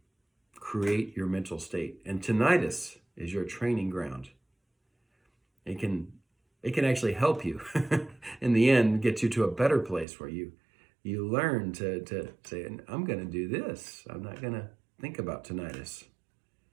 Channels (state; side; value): drops out; left; at 10.1 s